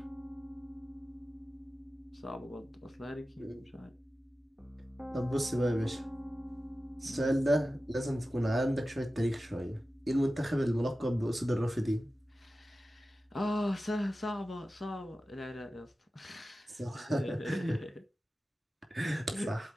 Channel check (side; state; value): both; normal; correlation 0.94